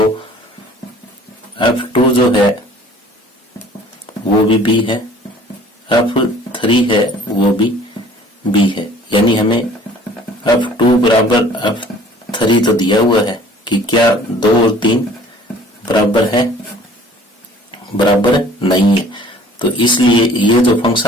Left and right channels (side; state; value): both; normal; correlation 0.51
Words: f2 जो है वो भी b है, f3 है वो भी b है, यानी हमें f2 बराबर f3 तो दिया हुआ है कि क्या 2 और 3 बराबर है, बराबर नहीं है। तो इसलिए ये जो